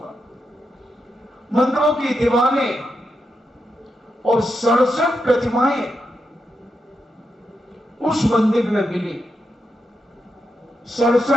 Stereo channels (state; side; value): normal; both; correlation 0.85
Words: मंदिरों की दीवारें और 67 प्रतिमाएं उस मंदिर में मिली।